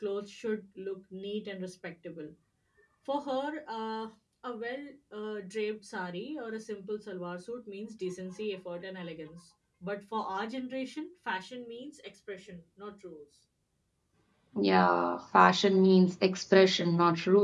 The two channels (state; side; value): identical; both; correlation 1.00